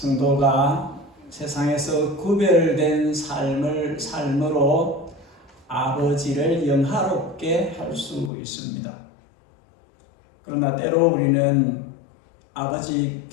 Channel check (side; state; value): right; drops out; at 8.3 s